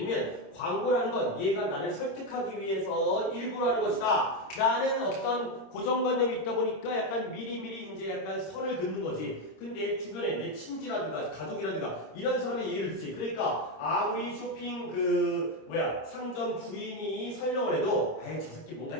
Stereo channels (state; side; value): late; right; 26 ms